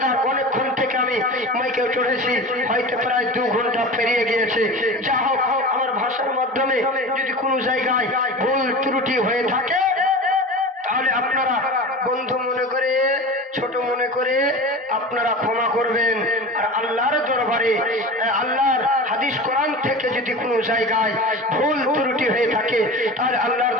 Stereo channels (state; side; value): normal; both; correlation 0.32